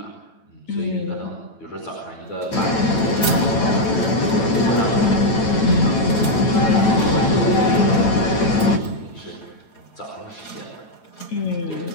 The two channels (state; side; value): late; right; 9.0 ms